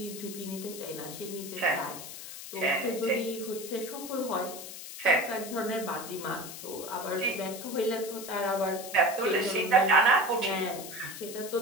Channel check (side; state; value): left; noise; hiss, 11 dB below the sound